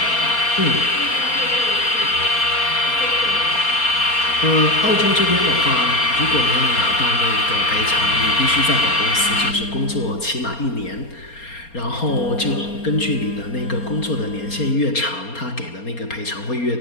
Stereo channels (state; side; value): late; right; 4.3 ms